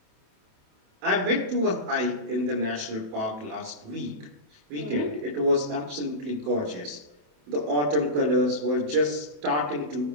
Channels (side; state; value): left; late; 27 ms